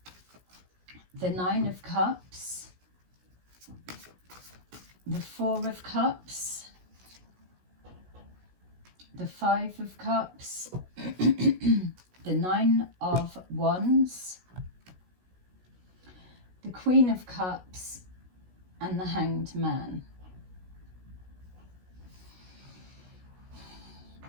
the Nine of Cups, the Four of Cups, the Five of Cups, the Nine of Wands, the Queen of Cups, and the Hanged Man.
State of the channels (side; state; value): left; late; 16 ms